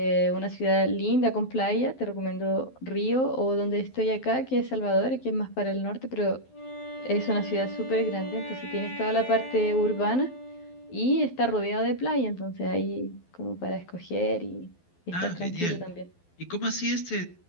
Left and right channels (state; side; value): late; right; 12 ms